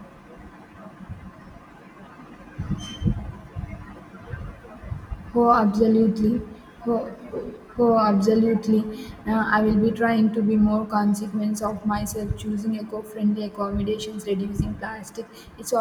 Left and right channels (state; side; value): identical; both; correlation 1.00